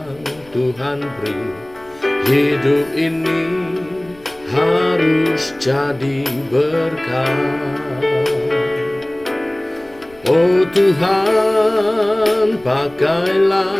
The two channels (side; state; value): left; noise; rumble, 26 dB below the sound